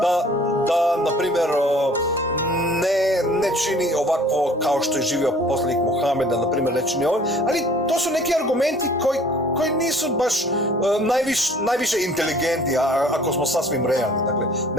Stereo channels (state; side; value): normal; both; correlation 0.52